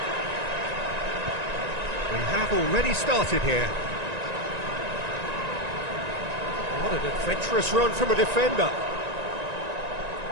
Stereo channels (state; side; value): late; left; 1.9 ms